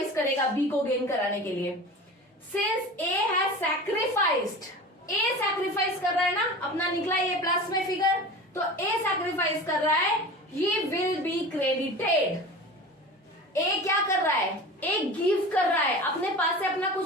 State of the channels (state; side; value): normal; both; correlation 0.34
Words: करेगा बी को गेन कराने के लिए। Since A has sacrificed, A sacrifice कर रहा है ना, अपना निकला ये प्लस में फिगर, तो ए सैक्रिफाइस कर रहा है, ही विल बी क्रेडिटेड। ए क्या कर रहा है, ए गिव कर रहा है, अपने पास से अपना